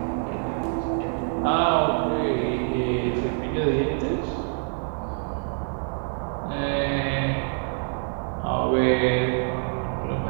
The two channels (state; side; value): silent; left; 55 dB below the other